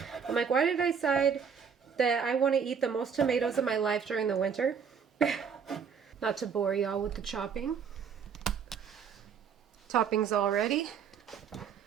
I'm like, why did I decide that I want to eat the most tomatoes in my life during the winter? Not to bore y'all with the chopping. Toppings all ready.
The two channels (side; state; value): left; quieter; 6.8 dB